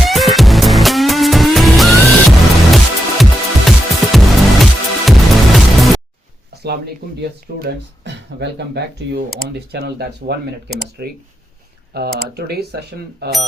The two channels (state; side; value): normal; both; correlation 0.86